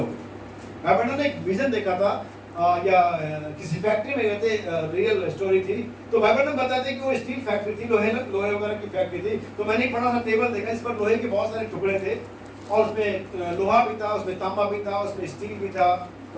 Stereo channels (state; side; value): identical; both; correlation 1.00